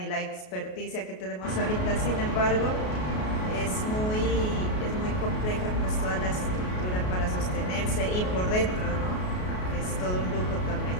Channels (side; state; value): right; late; 33 ms